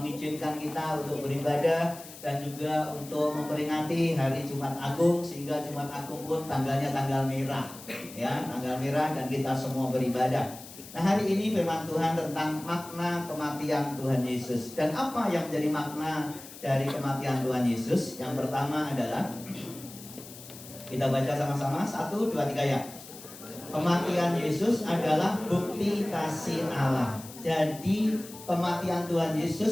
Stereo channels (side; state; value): left; noise; hiss, 16 dB below the sound